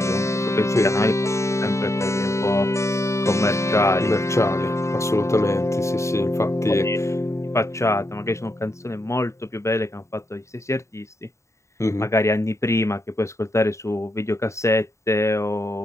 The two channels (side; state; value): right; late; 0.14 ms